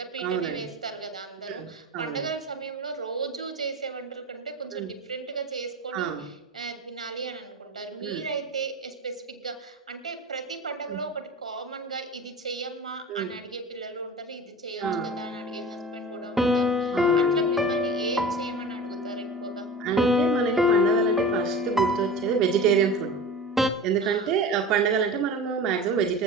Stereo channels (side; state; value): both; normal; correlation 0.34